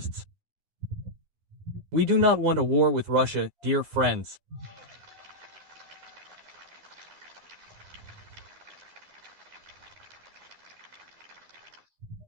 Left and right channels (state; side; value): late; left; 12 ms